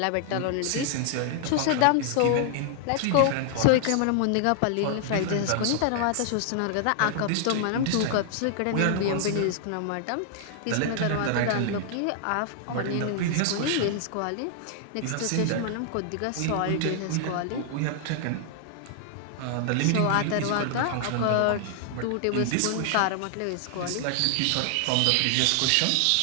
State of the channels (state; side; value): different; both; correlation 0.00